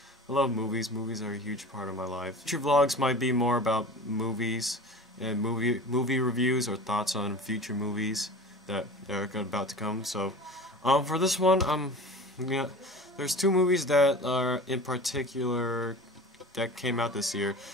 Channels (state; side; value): normal; both; correlation 0.37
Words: movies. Movies are a huge part of my life. Future vlogs might be more about movies and movie reviews or thoughts on future movies that are about to come. So, for this one, there's two movies that are in particular that came out this year